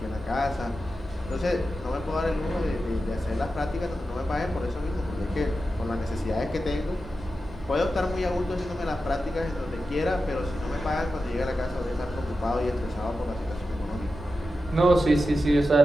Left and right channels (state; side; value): normal; both; correlation 0.91